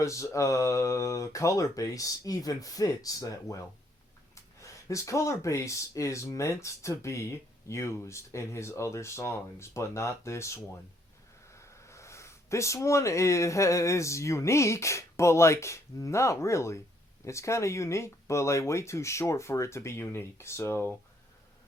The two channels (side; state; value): both; normal; correlation 0.69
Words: color base even fits that well. His color base is meant to be used in his other songs, but not this one. This one is unique, but like not really. It's kind of unique, but like way too short for it to be unique. So